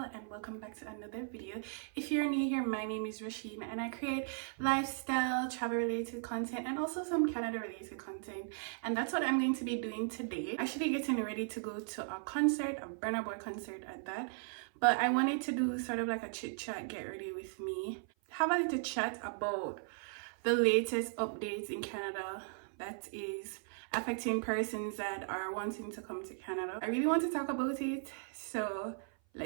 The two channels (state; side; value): silent; left; 53 dB below the other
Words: and welcome back to another video. If you're new here, my name is Rasheen and I create lifestyle, travel related content and also some Canada related content, and that's what I'm going to be doing today. Actually getting ready to go to a concert, a Burna Boy concert at that, but I wanted to do sort of like a chit chat, get ready with me, have a little chat about the latest updates in Canada that is affecting persons that are wanting to come to Canada. I really want to talk about it, so